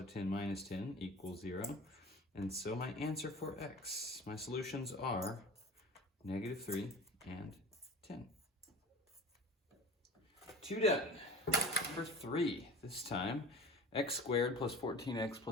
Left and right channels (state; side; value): normal; both; correlation 0.38